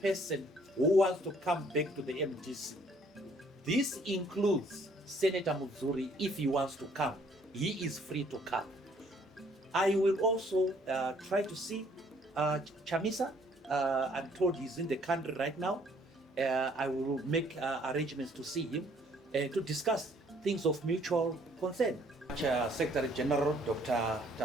person who wants to come back to the MDC. This includes Senator Muzuri. If he wants to come, he is free to come. I will also try to see Chamisa. I'm told he's in the country right now. I will make arrangements to see him to discuss things of mutual concern. Secretary General Dr.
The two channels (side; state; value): both; normal; correlation 0.62